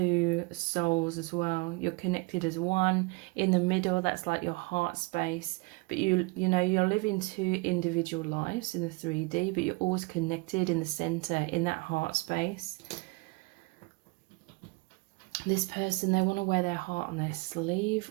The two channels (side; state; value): left; quieter; 27.9 dB